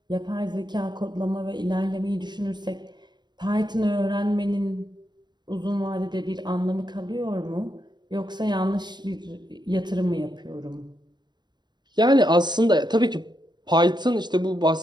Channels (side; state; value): left; late; 0.21 ms